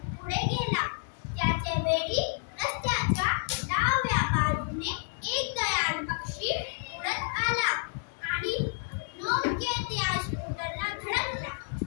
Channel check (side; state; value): right; silent; digital silence